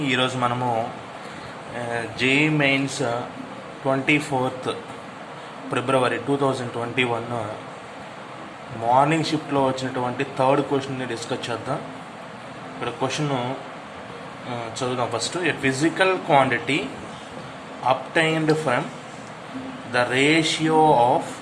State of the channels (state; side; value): identical; both; correlation 1.00